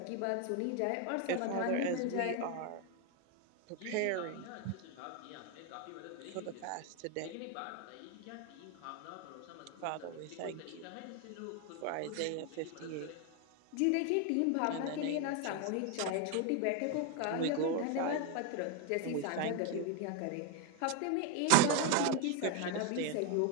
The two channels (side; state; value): both; different; correlation 0.01